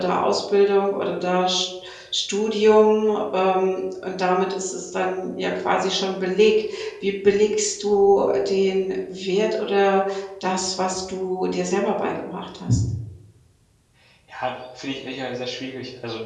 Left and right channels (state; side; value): identical; both; correlation 1.00